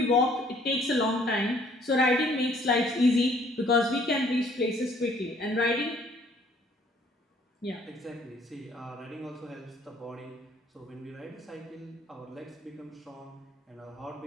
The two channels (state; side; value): normal; both; correlation 0.61